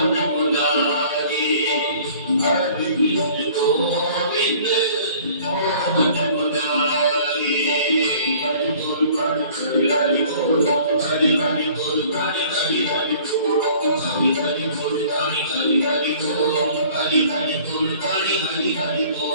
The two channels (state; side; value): inverted; both; correlation -0.51